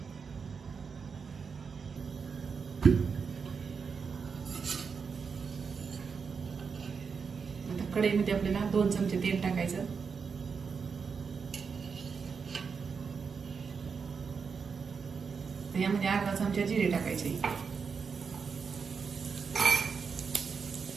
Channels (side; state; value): left; quieter; 5.7 dB